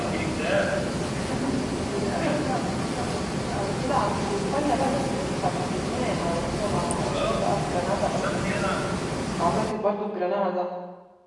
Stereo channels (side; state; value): both; identical; correlation 1.00